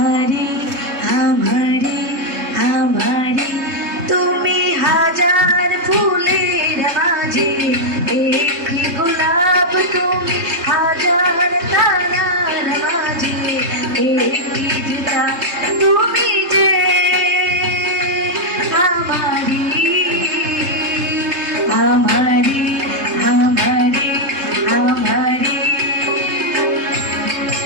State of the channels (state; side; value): late; left; 3.4 ms